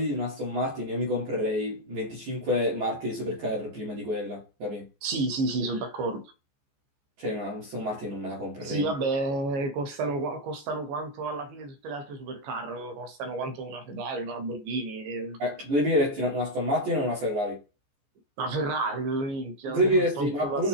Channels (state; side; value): late; left; 14 ms